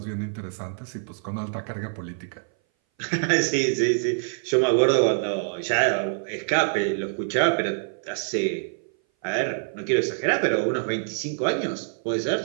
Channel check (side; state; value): left; silent; 58 dB below the other